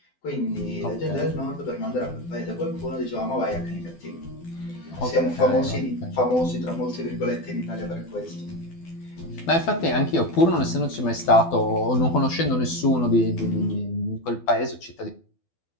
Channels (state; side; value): late; right; 12 ms